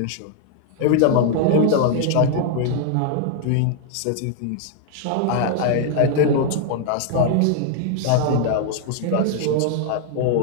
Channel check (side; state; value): both; different; correlation -0.01